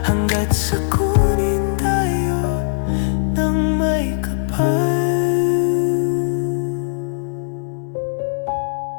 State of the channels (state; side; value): silent; right; digital silence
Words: Sa kunin tayo ng may kapal.